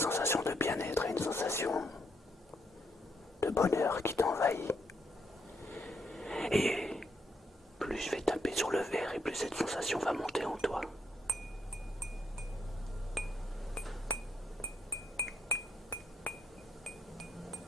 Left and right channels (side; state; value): both; normal; correlation 0.76